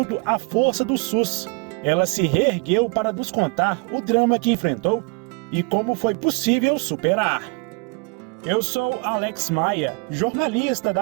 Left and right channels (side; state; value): left; quieter; 31.0 dB